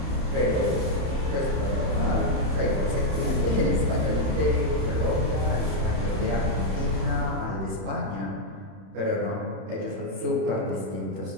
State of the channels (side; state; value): left; late; 31 ms